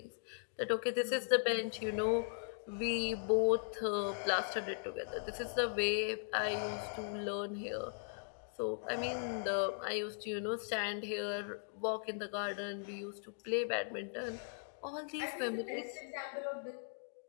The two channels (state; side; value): silent; right; digital silence